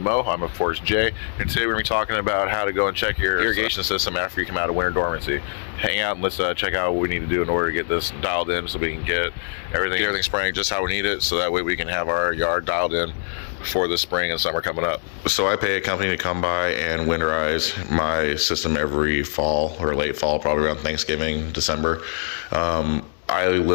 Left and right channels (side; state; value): right; silent; digital silence